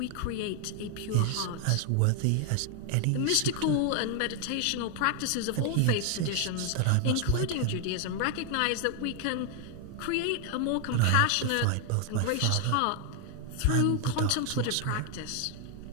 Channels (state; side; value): different; both; correlation 0.00